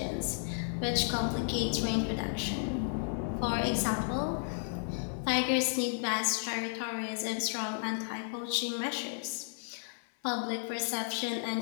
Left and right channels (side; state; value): right; silent; 56 dB below the other